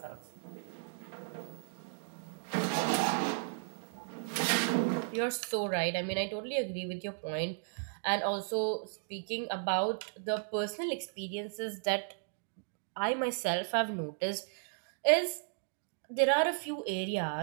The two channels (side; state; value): left; silent; digital silence